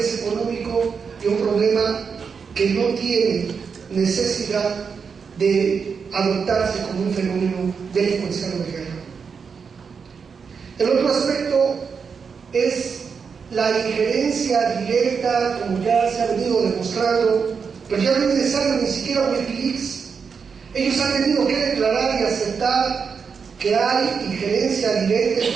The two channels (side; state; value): left; quieter; 5.9 dB